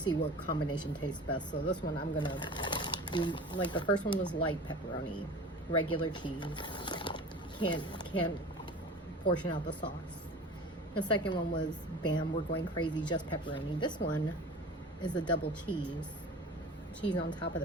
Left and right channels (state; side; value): normal; both; correlation 0.38